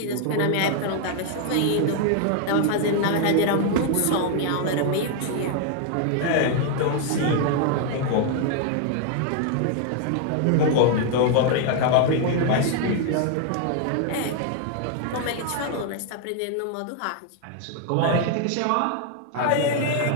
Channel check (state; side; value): different; both; correlation 0.00